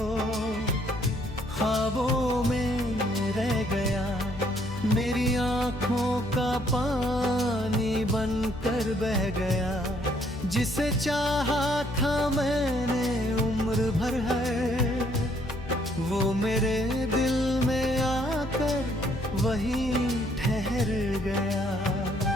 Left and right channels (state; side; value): noise; left; hum, 12 dB below the sound